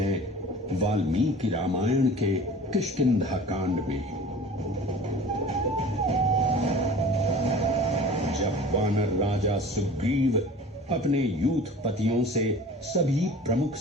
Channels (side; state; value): both; normal; correlation 0.42